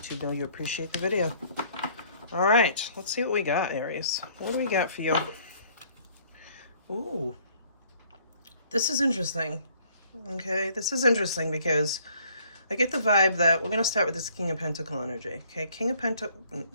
know you appreciate the video. Alright, let's see what we got, Aries. What do we got for you? Ooh, this is interesting. Okay, this is interesting because I get the vibe that we're going to start with this King of Pentacle energy. Okay,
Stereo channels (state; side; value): inverted; both; correlation -0.60